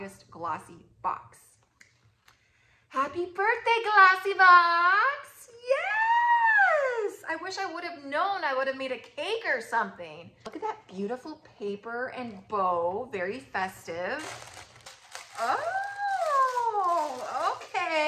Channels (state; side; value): identical; both; correlation 1.00